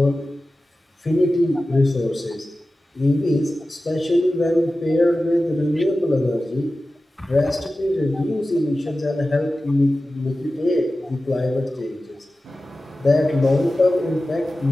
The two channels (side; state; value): both; normal; correlation 0.95